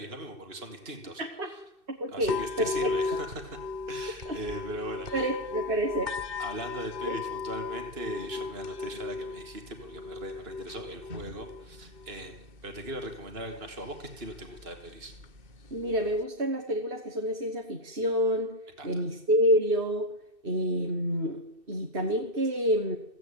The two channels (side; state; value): left; late; 2.6 ms